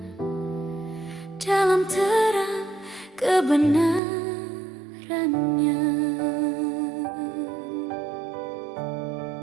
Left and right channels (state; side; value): drops out; left; at 4.0 s